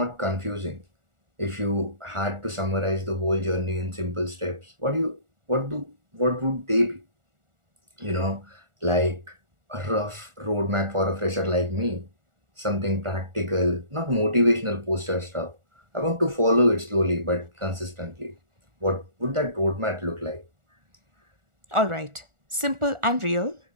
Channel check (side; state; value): left; late; 1.4 ms